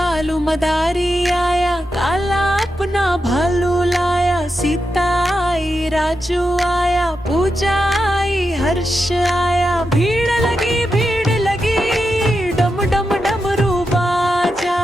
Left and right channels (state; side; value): normal; both; correlation 0.88